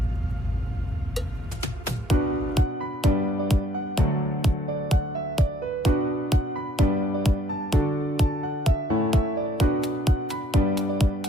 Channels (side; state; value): both; normal; correlation 0.62